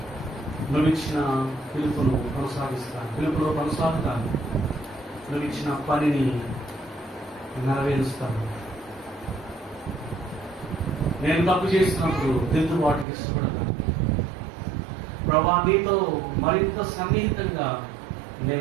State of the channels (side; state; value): left; drops out; at 13.1 s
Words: నువ్వు ఇచ్చిన పిలుపులో కొనసాగుతాను, నువ్వు ఇచ్చిన పనిని నెరవేరుస్తాను. నేను తప్పు చేసినప్పుడు దిద్దుబాటుకి ఇష్టపడతాను. ప్రభా, నీతో మరింత సన్నిహితంగా